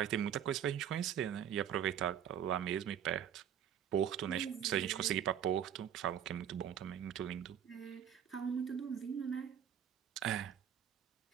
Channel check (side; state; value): left; quieter; 9.3 dB